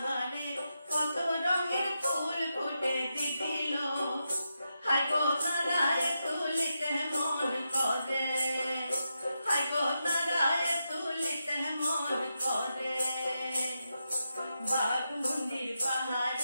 কত রঙের ফুল ফুটে দিদিল, হাই গো তারায় তুলিতে মন করে, হাই গো তারায় তুলিতে মন করে। বাঘমুন্ডির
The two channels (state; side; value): inverted; both; correlation -0.87